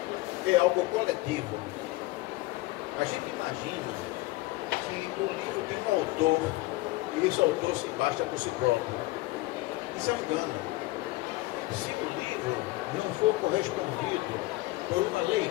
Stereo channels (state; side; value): quieter; right; 20.1 dB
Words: é algo coletivo. A gente imagina que o livro tem um autor e esse autor se basta por si próprio. Isso é um engano. Se o livro não for correspondido por uma